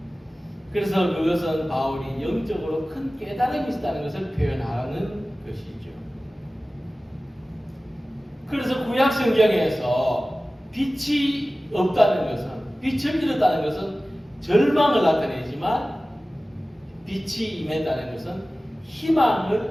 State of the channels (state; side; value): normal; both; correlation 0.97